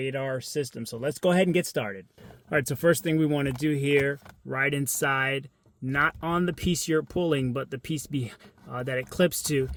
system. So let's go ahead and get started. All right, so first thing we want to do here, right inside, not on the piece you're pulling, but the piece that it clips to,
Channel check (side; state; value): both; identical; correlation 1.00